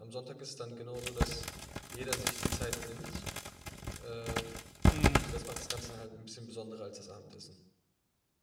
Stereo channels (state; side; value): identical; both; correlation 1.00